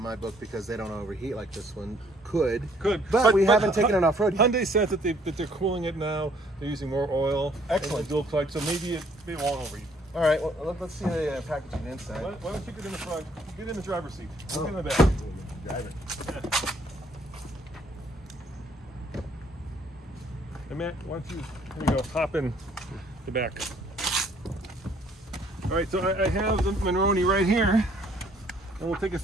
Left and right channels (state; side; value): normal; both; correlation 0.63